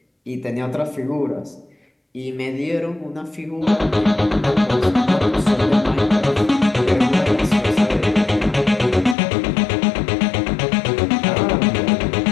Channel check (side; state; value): right; drops out; at 9.2 s